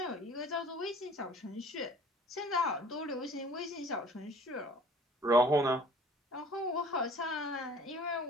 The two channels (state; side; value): normal; both; correlation 0.50